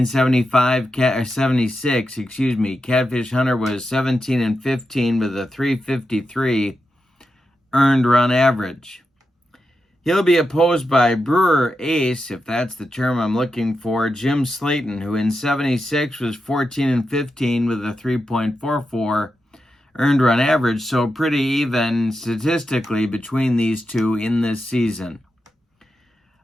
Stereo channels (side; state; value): both; normal; correlation 0.88